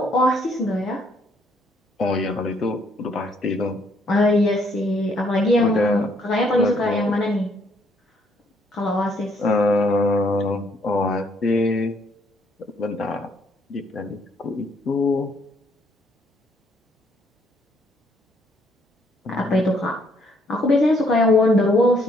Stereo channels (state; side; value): normal; both; correlation 0.68